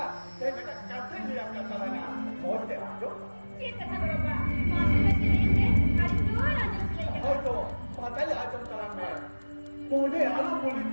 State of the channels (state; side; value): inverted; both; correlation -1.00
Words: te beta kantha le apna talana. Moj de ajo. ये कथा बड़ो बा मासी में से नहीं है आज जो राजा से लेके Hoy to, patay ajam talan me. Pune alu pulit